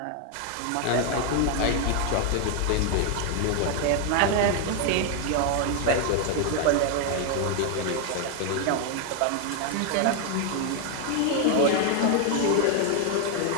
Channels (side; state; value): both; different; correlation 0.01